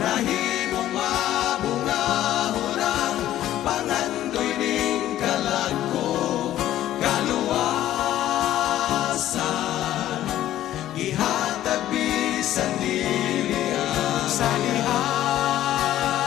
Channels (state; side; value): quieter; right; 13.1 dB